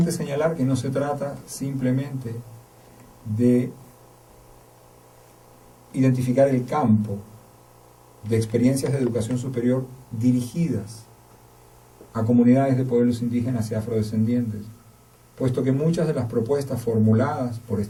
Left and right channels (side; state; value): both; identical; correlation 1.00